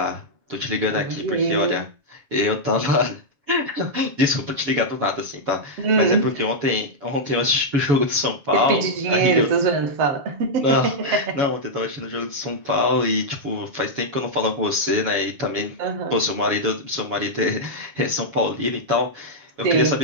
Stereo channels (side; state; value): left; late; 7.2 ms